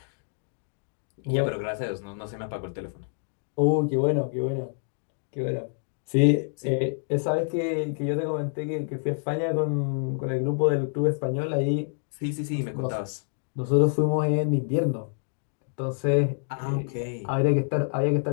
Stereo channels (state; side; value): silent; right; digital silence